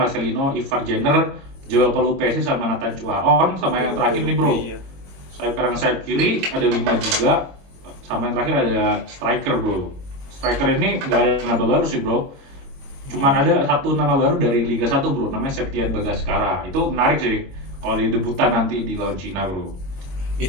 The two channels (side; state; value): left; late; 22 ms